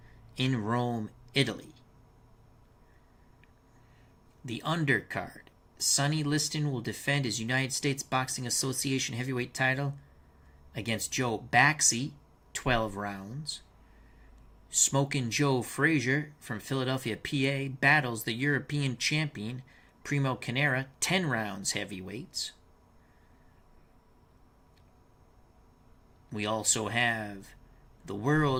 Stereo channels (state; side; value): identical; both; correlation 1.00